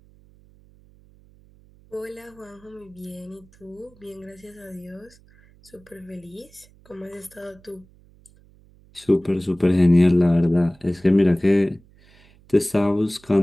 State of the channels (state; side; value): noise; right; hum, 28 dB below the sound